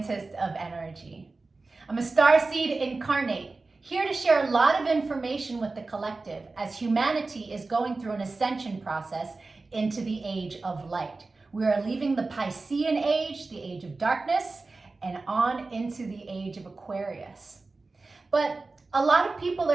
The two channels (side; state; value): left; quieter; 3.6 dB